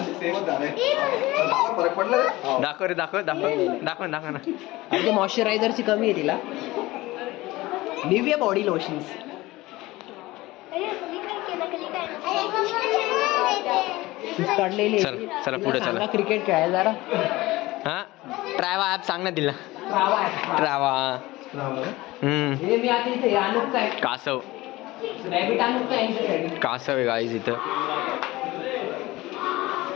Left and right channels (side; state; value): right; quieter; 19.3 dB